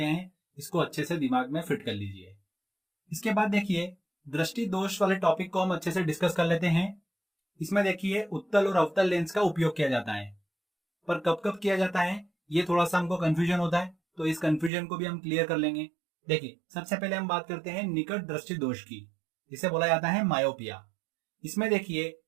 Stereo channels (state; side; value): drops out; left; at 14.7 s